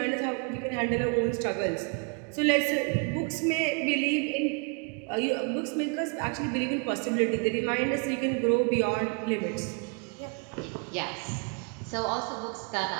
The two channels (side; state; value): left; quieter; 36.5 dB